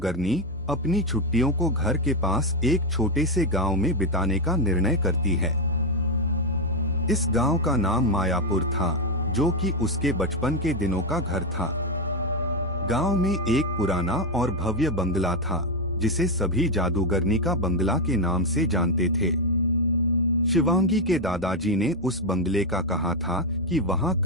अपनी छुट्टियों को घर के पास एक छोटे से गांव में बिताने का निर्णय करती है। इस गांव का नाम मायापुर था, जो कि उसके बचपन के दिनों का घर था। गांव में एक पुराना और भव्य बंगला था, जिसे सभी जादूगरनी का बंगला के नाम से जानते थे। शिवांगी के दादाजी ने उस बंगले का कहा था कि वहाँ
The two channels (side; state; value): left; noise; hum, 20 dB below the sound